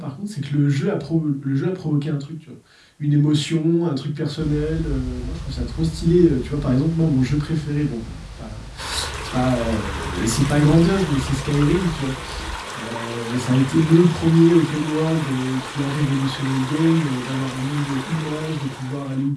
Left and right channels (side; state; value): both; identical; correlation 1.00